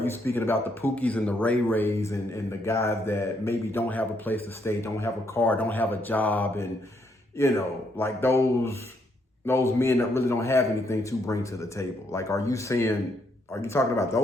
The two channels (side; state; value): both; normal; correlation 0.74